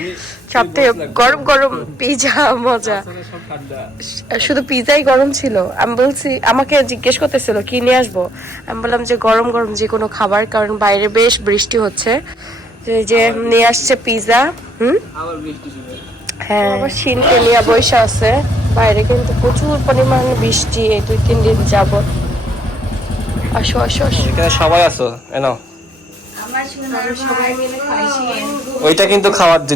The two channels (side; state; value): both; normal; correlation 0.69